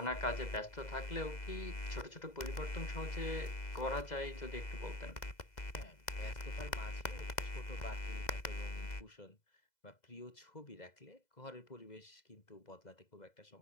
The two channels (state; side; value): late; right; 2.0 ms